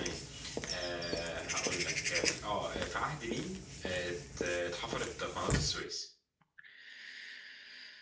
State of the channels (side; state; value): both; identical; correlation 1.00